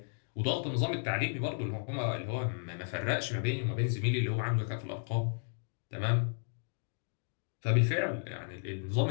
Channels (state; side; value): silent; right; digital silence